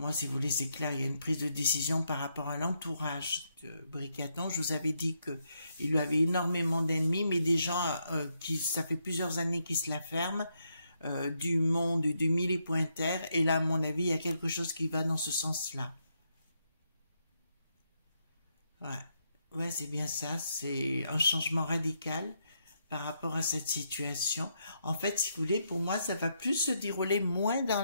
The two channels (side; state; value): both; inverted; correlation -0.79